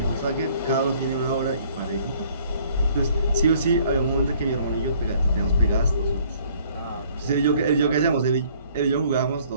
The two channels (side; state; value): both; inverted; correlation -0.59